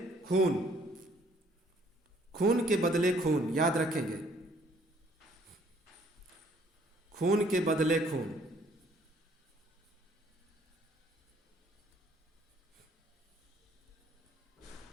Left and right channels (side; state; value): both; normal; correlation 0.62